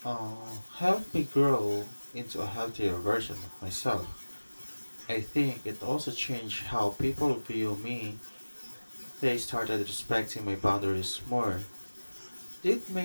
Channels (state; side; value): inverted; both; correlation -1.00